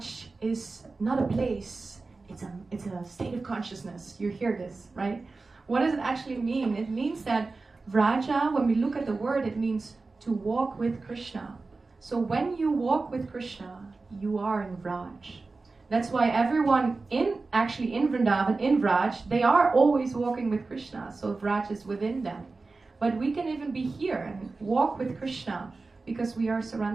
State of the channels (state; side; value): quieter; left; 3.8 dB